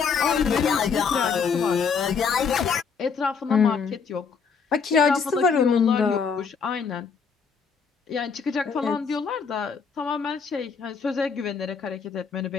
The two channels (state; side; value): quieter; right; 5.8 dB